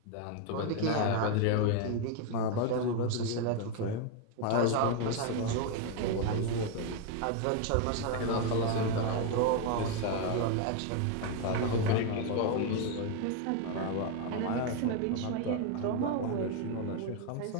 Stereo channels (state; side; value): different; both; correlation 0.01